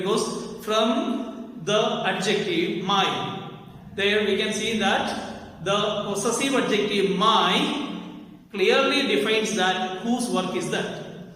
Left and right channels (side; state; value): both; identical; correlation 1.00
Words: from the adjective my, there we can see that the possessive adjective my clearly defines that whose work is that.